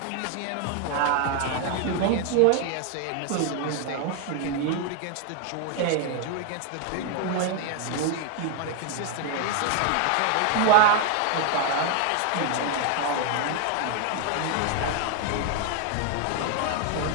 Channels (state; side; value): different; both; correlation 0.00